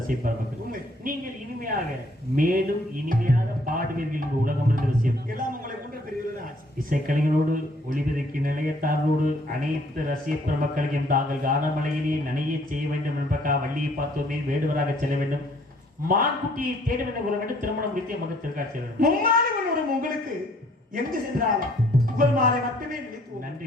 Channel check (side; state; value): both; normal; correlation 0.62